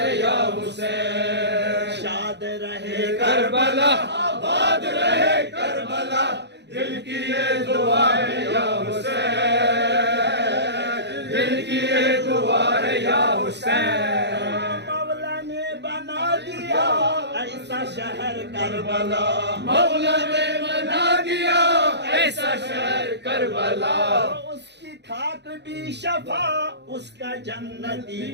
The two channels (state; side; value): late; left; 0.50 ms